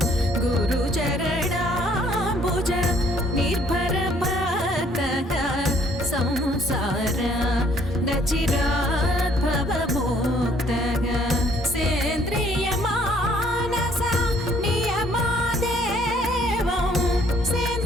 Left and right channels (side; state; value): both; normal; correlation 0.62